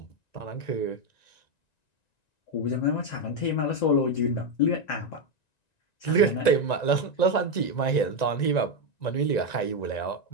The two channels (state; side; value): late; right; 1.9 ms